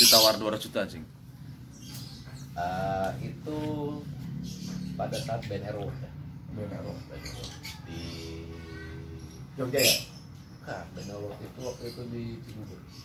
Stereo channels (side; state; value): both; identical; correlation 1.00